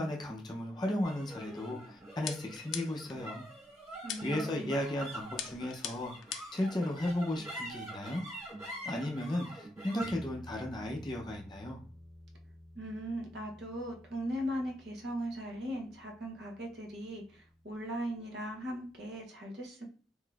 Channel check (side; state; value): both; normal; correlation 0.79